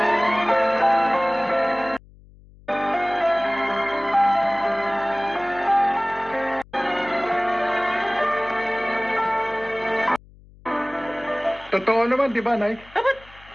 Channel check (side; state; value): left; noise; hum, 24 dB below the sound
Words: Totoo naman, di ba, Nay?